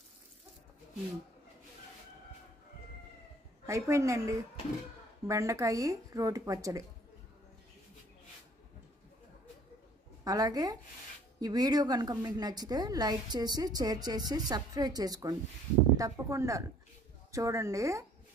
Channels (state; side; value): normal; both; correlation 0.56